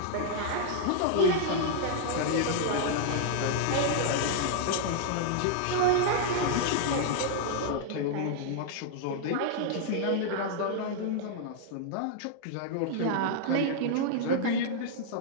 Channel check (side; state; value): both; different; correlation -0.01